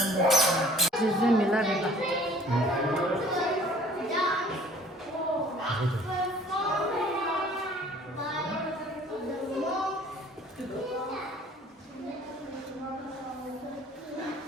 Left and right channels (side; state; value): both; normal; correlation 0.53